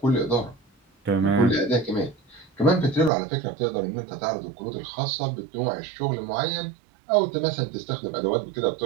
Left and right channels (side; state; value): left; drops out; at 3.1 s